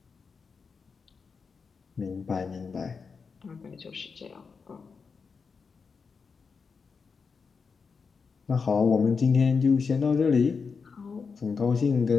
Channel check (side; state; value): right; quieter; 5.3 dB